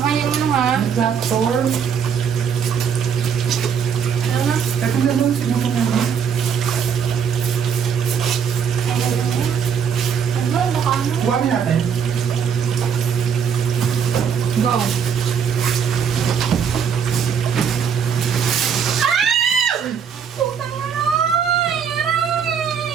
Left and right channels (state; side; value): quieter; left; 7.3 dB